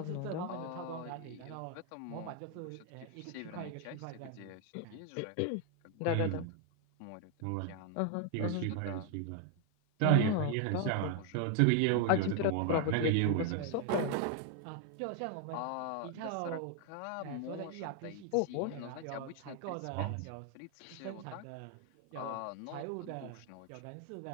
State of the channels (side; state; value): both; different; correlation 0.01